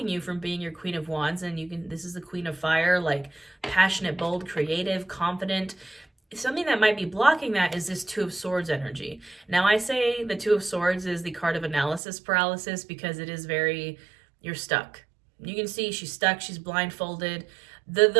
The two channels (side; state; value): left; drops out; at 12.0 s